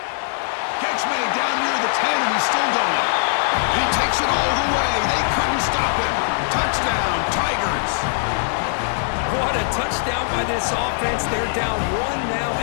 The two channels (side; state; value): right; silent; digital silence